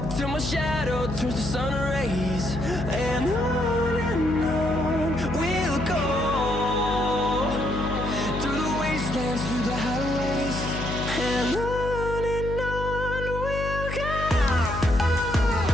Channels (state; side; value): noise; left; hum, 5 dB below the sound